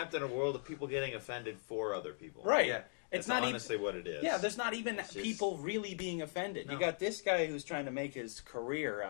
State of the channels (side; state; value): right; silent; 52 dB below the other